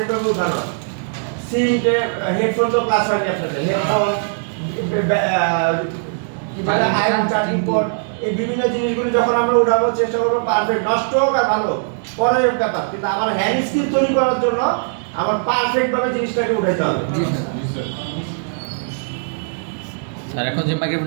ভাবে উঠানো। সিম হেডফোন তো ক্লাস হয়নি আপনাদের, হেডফোন আয়রন চার্জিং পোর্ট, এই বিভিন্ন জিনিসগুলো যখন আমরা উঠাবো চেষ্টা করবো পারফেক্ট, নষ্ট হোক আর ভালো পরের ব্যাপার, কিন্তু আমার হ্যান্ড স্কিল তৈরি করার জন্য আমার পারফেক্ট ভাবে জিনিসটাকে উঠাইতে হবে। স্যার এখন যে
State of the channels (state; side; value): silent; left; digital silence